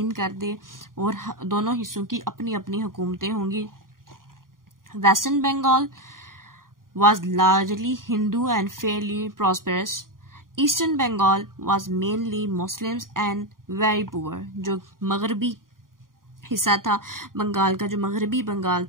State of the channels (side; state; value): left; late; 0.91 ms